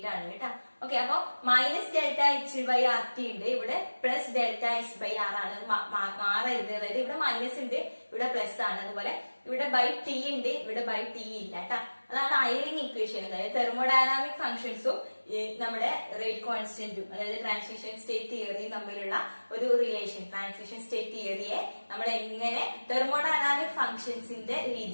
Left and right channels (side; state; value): both; inverted; correlation -1.00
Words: കേട്ടോ. Okay, അപ്പൊ minus delta H by R T ഉണ്ട്, ഇവിടെ plus delta S by R ആണ് മാറരുത്. അതായത് ഇവിടെ മൈനസ് ഉണ്ട്, ഇവിടെ പ്ലസ് ആണ്. അതുപോലെ ഇവിടെ ബൈ ടി ഉണ്ട്, ഇവിടെ ബൈ ടി ഇല്ല കേട്ടോ. അതാണ് ഐറിംഗ് ഇക്വേഷൻ. അതായത് തെർമോഡൈനാമിക് ഫംഗ്ഷൻസും നമ്മുടെ റേറ്റ് കോൺസ്റ്റന്റും അതായത് ട്രാൻസിഷൻ സ്റ്റേറ്റ് തിയറിയും തമ്മിലുള്ള ഒരു റിലേഷൻ, ട്രാൻസിഷൻ സ്റ്റേറ്റ് തിയറിയെ നമ്മൾ എങ്ങനെ തെർമോഡൈനാമിക് ഫംഗ്ഷൻസിന്റെ